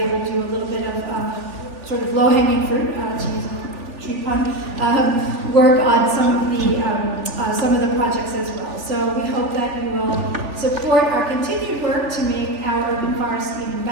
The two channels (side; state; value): left; late; 3.4 ms